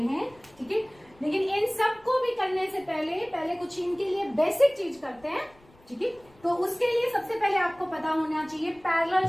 ठीक है। लेकिन इन सबको भी करने से पहले कुछ इनके लिए बेसिक चीज करते हैं, ठीक है। तो उसके लिए सबसे पहले आपको पता होना चाहिए parallel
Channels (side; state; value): left; noise; rumble, 28 dB below the sound